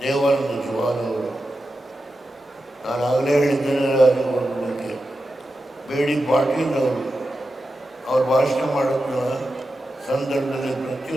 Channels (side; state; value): both; normal; correlation 0.90